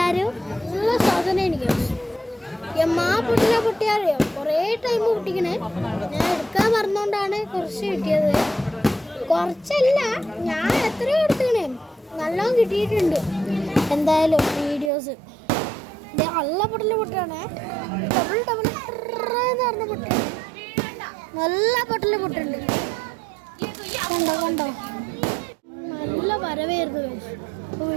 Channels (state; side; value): drops out; left; at 14.9 s